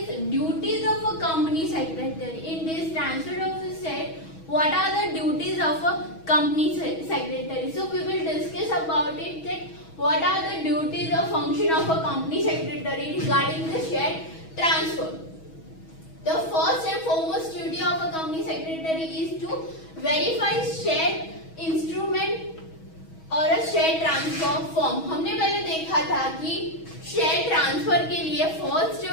duties of a company secretary. In this transfer of share, what are the duties of a company secretary? So we will discuss about it, that what are the duties or function of a company secretary regarding the share transfer. The first and foremost duty of a company secretary is to verify share instrument और share transfer form. हमने पहले देखा था कि share transfer के लिए first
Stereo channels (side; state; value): right; late; 6.2 ms